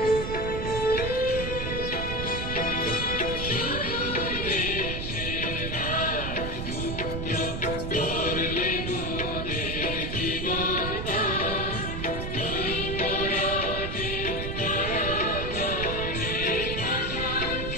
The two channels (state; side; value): noise; right; rumble, 4 dB below the sound